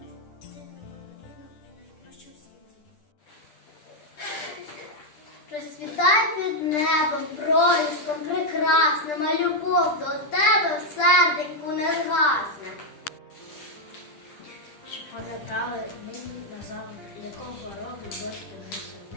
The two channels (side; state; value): right; late; 10 ms